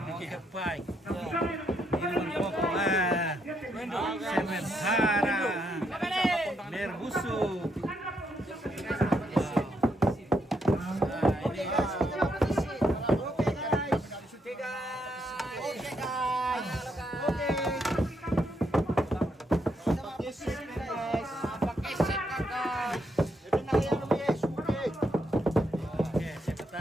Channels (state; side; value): normal; both; correlation 0.77